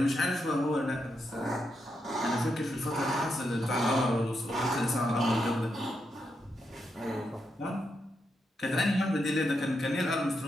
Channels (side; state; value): both; normal; correlation 0.83